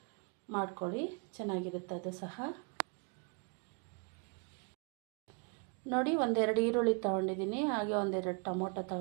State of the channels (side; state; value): left; quieter; 37.1 dB